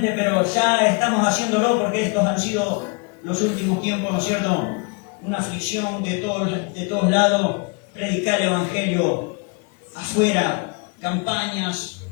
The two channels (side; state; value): right; quieter; 32.8 dB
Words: pero ya estamos haciéndolo, porque estos han sido los últimos tiempos, ¿no es cierto?, una aflicción de todos lados. Predicar el Evangelio afuera, campañas,